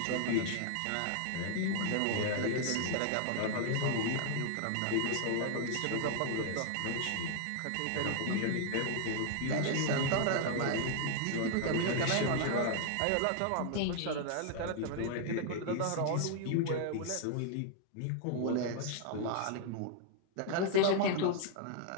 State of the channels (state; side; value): different; both; correlation 0.00